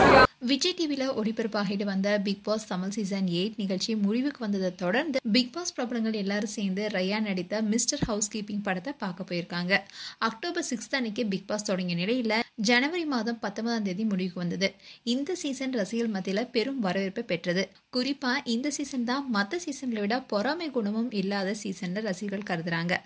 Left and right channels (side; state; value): both; identical; correlation 1.00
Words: விஜய் டிவியில் ஒளிபரப்பாகிட்டு வந்த பிக் பாஸ் தமிழ் சீசன் 8 நிகழ்ச்சி முடிவுக்கு வந்ததை தொடர்ந்து பிக் பாஸ் பிரபலங்கள் எல்லாரும் சேர்ந்து ரயான் நடித்த மிஸ்டர் ஹவுஸ் கீப்பிங் படத்தை பார்க்க போயிருக்காங்க. அக்டோபர் 6 அன்னைக்கு பிக் பாஸ் தொடங்கிய நிலையில் ஜனவரி மாதம் 19ஆம் தேதி முடிவுக்கு வந்தது. இந்த சீசன் ரசிகர்கள் மத்தியில் பெரும் வரவேற்பை பெற்றது. குறிப்பா இந்த சீசன் தான் மற்ற சீசன்களை விட பொறாமை குணமும் இல்லாத சீசன் ரசிகர்கள் கருதுறாங்க.